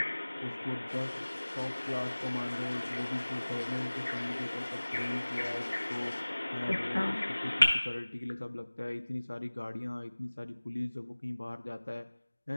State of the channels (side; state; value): both; inverted; correlation -1.00